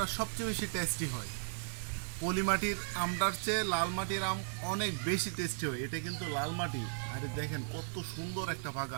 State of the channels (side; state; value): left; silent; digital silence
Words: সবচেয়ে বেশি টেস্টি হয়। পলি মাটির আমটার চেয়ে লাল মাটির আম অনেক বেশি টেস্টি হয়। এটা কিন্তু লাল মাটি। আরে দেখেন কত সুন্দর একটা